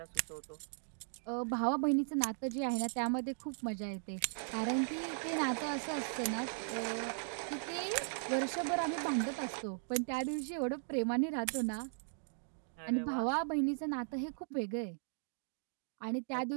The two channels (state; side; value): silent; left; digital silence